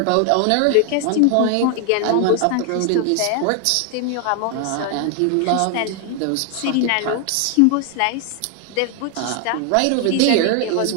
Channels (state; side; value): different; both; correlation 0.00